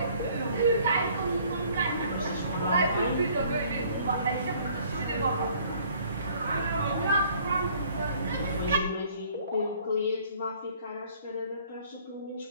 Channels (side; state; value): both; inverted; correlation -0.57